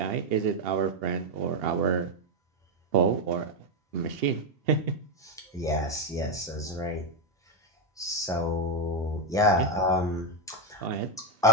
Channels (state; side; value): normal; both; correlation 0.06